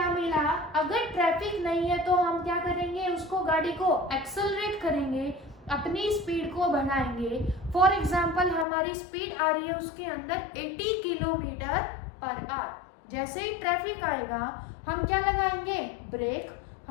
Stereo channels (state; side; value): drops out; right; at 8.7 s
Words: मिला अगर ट्रैफिक नहीं है तो हम क्या करेंगे उसको गाड़ी को एक्सेलरेट करेंगे, अपनी स्पीड को बढ़ाएंगे। फॉर एग्जांपल हमारी स्पीड आ रही है उसके अंदर 80 किलोमीटर पर आवर। जैसे ही ट्रैफिक आएगा हम क्या लगाएंगे ब्रेक,